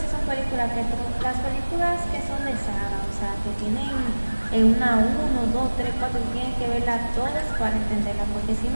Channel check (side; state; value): both; inverted; correlation -1.00